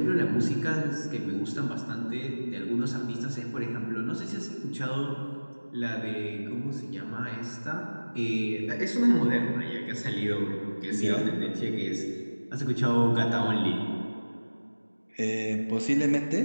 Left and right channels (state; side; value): inverted; both; correlation -1.00